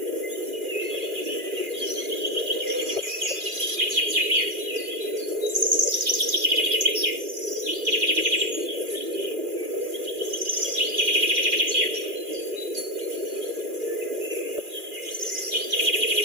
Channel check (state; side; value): late; left; 2.4 ms